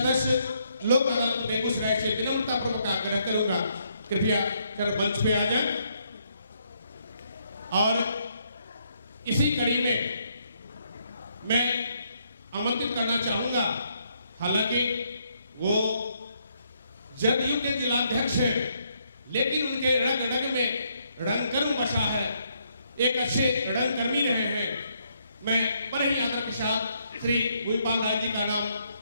लोक अदालत बेगूसराय से विनम्रता पूर्वक आग्रह करूंगा कृपया कर मंच पे आ जाए। और इसी कड़ी में मैं आमंत्रित करना चाहूंगा, हालांकि वो जदयू के जिलाध्यक्ष हैं लेकिन उनके रग रग में रंगकर्म बसा है, एक अच्छे रंगकर्मी रहे हैं। मैं बड़े ही आदर के साथ श्री भूपाल राय जी का नाम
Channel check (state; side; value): inverted; both; correlation -0.74